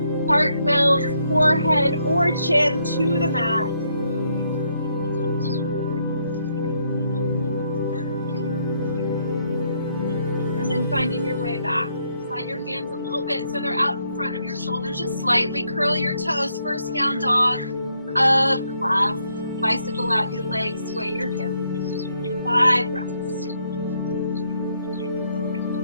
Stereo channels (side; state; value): both; inverted; correlation -0.74